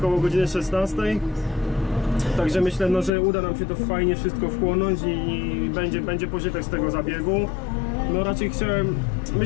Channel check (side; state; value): right; drops out; at 3.1 s